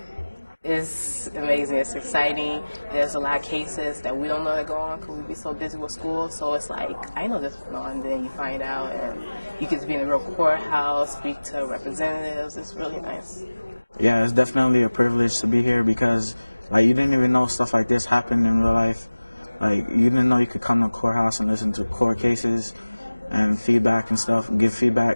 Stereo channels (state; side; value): inverted; both; correlation -1.00